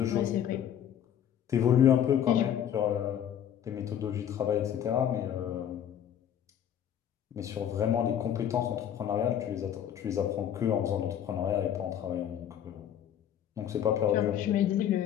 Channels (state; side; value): quieter; right; 9.8 dB